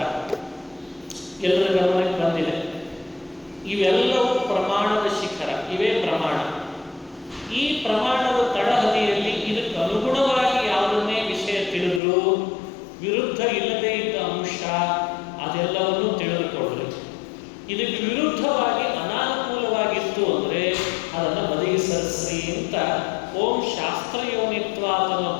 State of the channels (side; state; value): right; drops out; at 12.0 s